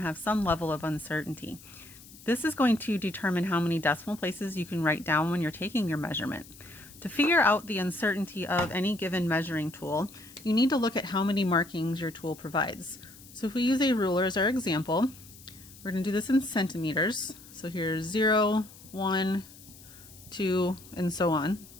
have some level of uncertainty. This is going to determine how many decimal places you can write down when you're taking your measurement. To figure out the uncertainty of any given measuring tool, you need to look at how many markings your tool provides. So if we use a ruler as our example, we're going to do this in centimeters. So here's 0, 1, 2, and so on.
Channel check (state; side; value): noise; left; hiss, 20 dB below the sound